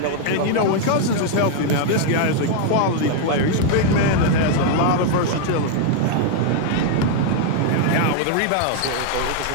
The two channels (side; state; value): both; different; correlation 0.00